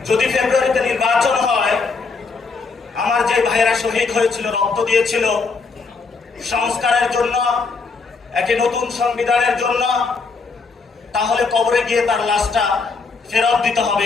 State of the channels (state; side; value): quieter; right; 4.5 dB